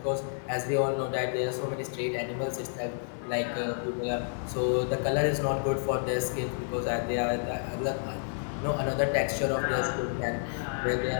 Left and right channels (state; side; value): silent; right; digital silence